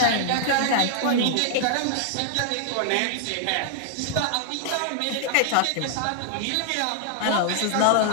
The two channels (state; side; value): different; both; correlation -0.01